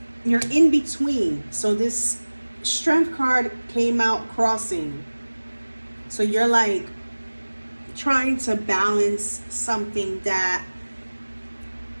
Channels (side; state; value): both; inverted; correlation -1.00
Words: you're in between. So this Strength card came out crossing. So you're like trying to balance something that